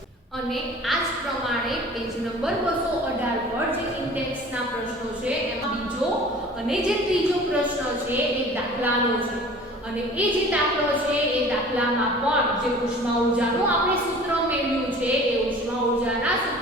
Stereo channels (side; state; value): both; normal; correlation 0.45